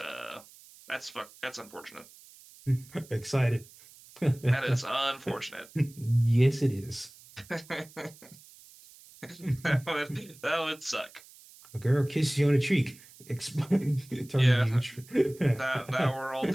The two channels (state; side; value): noise; right; hiss, 23 dB below the sound